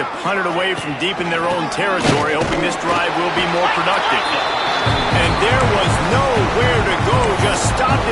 punt it away from deep in their own territory, hoping this drive will be more productive. And there was nowhere to go, just stopped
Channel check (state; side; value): identical; both; correlation 1.00